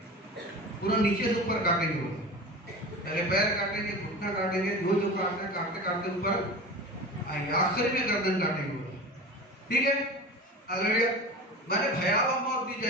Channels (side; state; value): both; normal; correlation 0.32